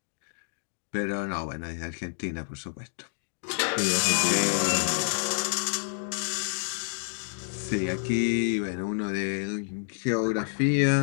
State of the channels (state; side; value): silent; right; digital silence